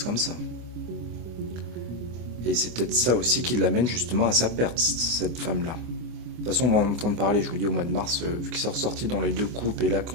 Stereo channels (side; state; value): left; late; 24 ms